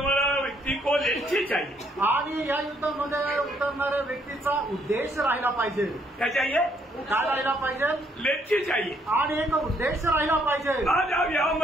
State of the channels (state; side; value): normal; both; correlation 0.69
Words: व्यक्ति को लक्ष्य चाहिए। आणि या युद्धामध्ये उतरणाऱ्या व्यक्तीचा उद्देश राहिला पाहिजे। क्या चाहिए? काय राहिला पाहिजे? लक्ष्य चाहिए। आणि एक उद्देश राहिला पाहिजे। आज आप यहाँ